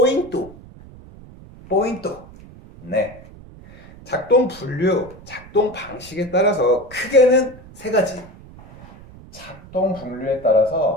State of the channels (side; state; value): right; noise; rumble, 20 dB below the sound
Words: 네. 작동 분류, 작동 방식에 따라서 크게는 세 가지. 작동 분류에